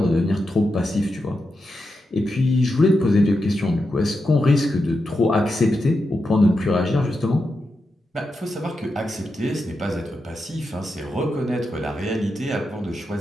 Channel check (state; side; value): normal; both; correlation 0.87